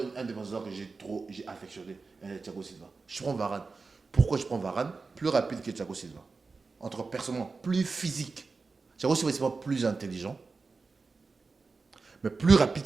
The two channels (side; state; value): left; quieter; 4.2 dB